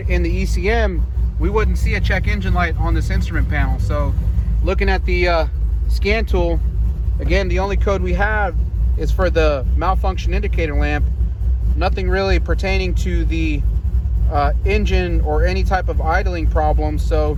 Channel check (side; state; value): both; identical; correlation 1.00